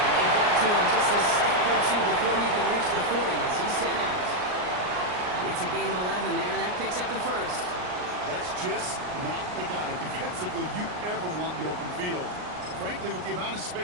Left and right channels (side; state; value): left; late; 39 ms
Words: they got to him just a step or two before he can reach the 40 as he's sent out. It's a gain of 11 there, and that picks up the first. That's just not the guy defensively you ever want in the open field. Frankly, with the amount of